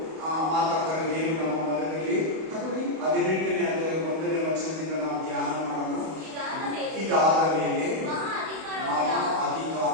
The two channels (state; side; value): late; left; 31 ms